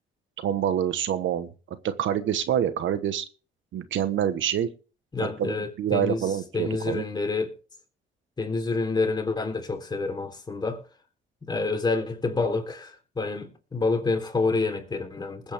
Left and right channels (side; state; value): both; normal; correlation 0.42